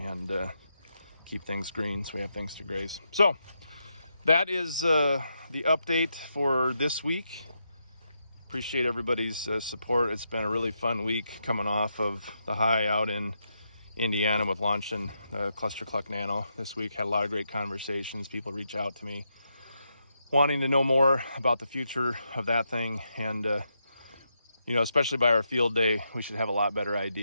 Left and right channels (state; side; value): inverted; both; correlation -0.83